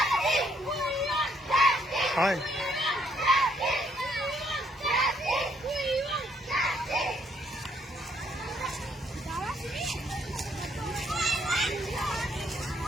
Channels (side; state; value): both; normal; correlation 0.70